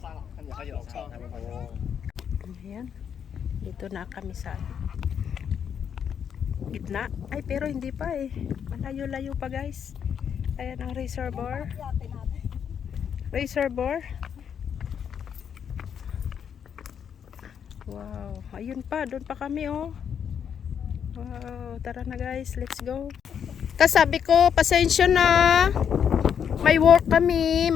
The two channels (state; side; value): quieter; right; 8.0 dB